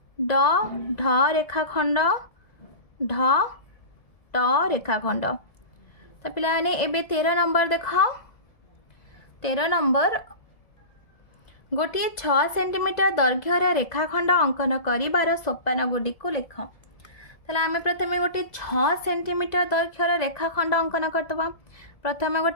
ड ढ रेखाखंड, ढ ट रेखाखंड। तो पिला माने एबे 13 नंबर देख 13 नंबर गोटे 6 सेंटीमीटर दैर्घ्यर रेखाखंड अंकन कर सोपान गुड़ी को लिख। ताला आम प्रथम गोटे 6 सेंटीमीटर दैर्घ्यर रेखाखंड अंकन करदबा। प्रथम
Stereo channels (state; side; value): late; right; 1.7 ms